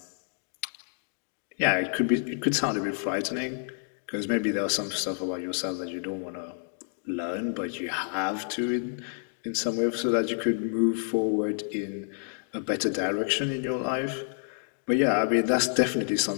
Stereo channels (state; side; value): silent; right; digital silence